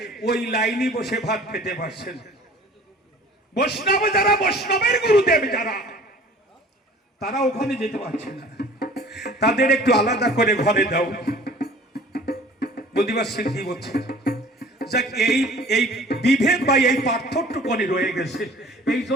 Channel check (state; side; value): normal; both; correlation 0.48